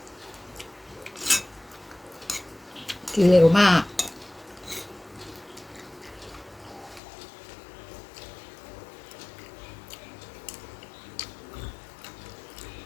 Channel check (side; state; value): right; drops out; at 7.0 s